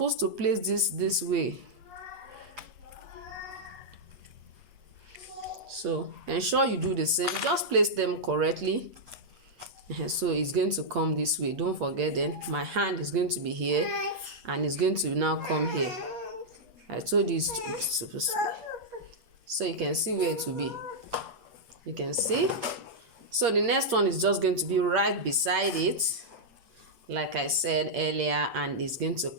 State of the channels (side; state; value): left; late; 8.6 ms